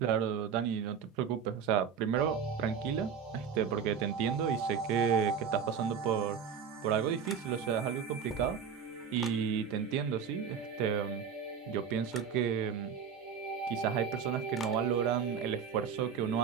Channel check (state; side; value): quieter; left; 6.9 dB